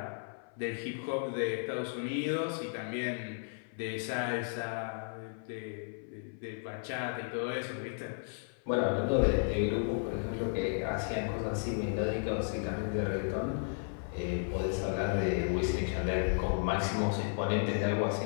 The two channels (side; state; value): right; silent; 55 dB below the other